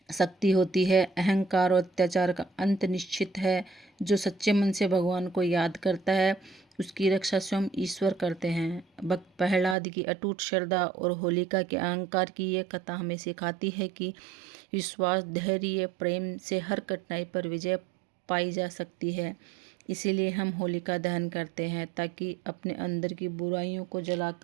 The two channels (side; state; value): left; drops out; at 9.8 s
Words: शक्ति होती है। अहंकार और अत्याचार का अंत निश्चित है। जो सच्चे मन से भगवान को याद करता है उसकी रक्षा स्वयं ईश्वर करते हैं। भक्त प्रहलाद की अटूट श्रद्धा और होलिका के अहंकार की ये कथा हमें सिखाती है कि विश्वास, धैर्य, प्रेम से हर कठिनाई पर विजय पाई जा सकती है। इसीलिए हम होलिका दहन करते हैं ताकि अपने अंदर की बुराइयों को